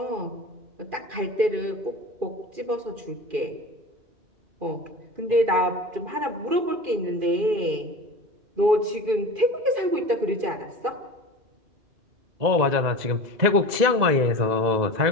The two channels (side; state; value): left; late; 2.0 ms